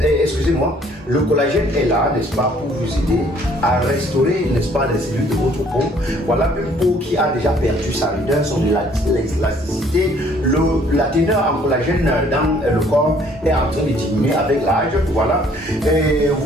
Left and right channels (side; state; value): both; normal; correlation 0.60